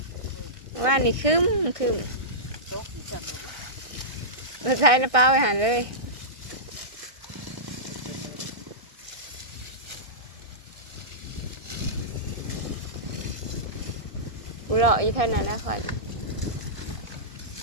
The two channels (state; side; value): late; left; 1.6 ms